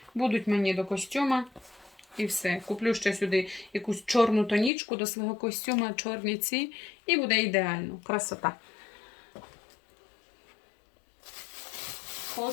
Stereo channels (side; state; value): right; drops out; at 4.7 s